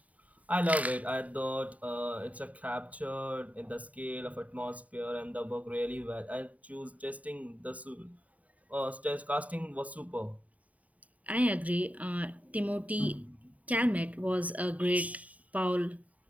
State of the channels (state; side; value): late; left; 0.070 ms